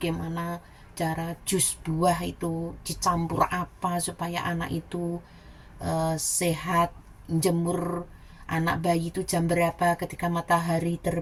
cara jus buah itu dicampur apa supaya anak itu sehat, jemur anak bayi itu jam berapa, ketika matahari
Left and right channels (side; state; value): both; identical; correlation 1.00